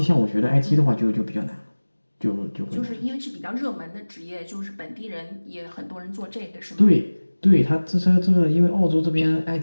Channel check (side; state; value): both; inverted; correlation -1.00